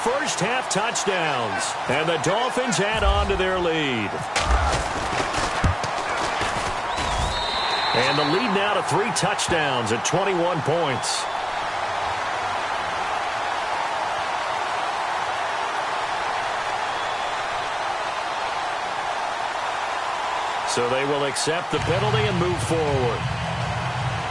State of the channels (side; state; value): both; identical; correlation 1.00